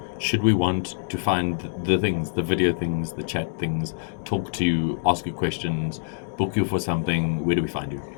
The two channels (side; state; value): right; silent; digital silence